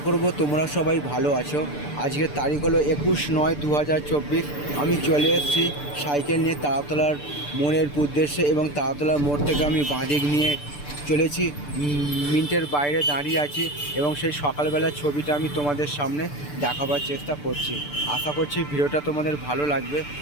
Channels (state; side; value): late; right; 6.8 ms